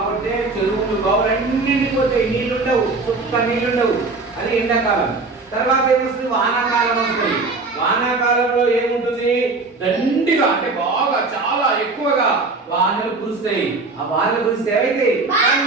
చెరువులు బావులు అన్ని పోతాయి, నీళ్లుండవు, చుక్క నీళ్లుండవు. అది ఎండాకాలం. తర్వాత ఏమొస్తుంది? వానాకాలం వస్తుంది. వానాకాలంలో ఏముంటుంది? దండిగా అంటే బాగా చాలా ఎక్కువగా వానలు కురుస్తాయి. ఆ వానలు కురిస్తే ఏమైతే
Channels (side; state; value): left; quieter; 3.7 dB